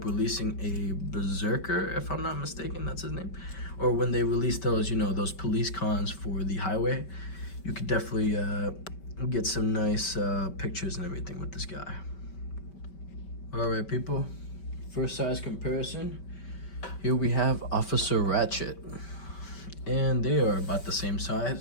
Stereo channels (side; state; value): right; late; 5.2 ms